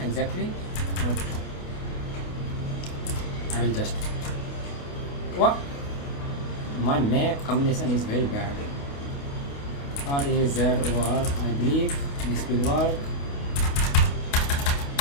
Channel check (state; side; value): late; right; 28 ms